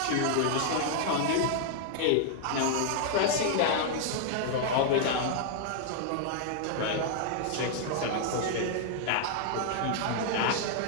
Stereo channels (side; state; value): both; different; correlation 0.00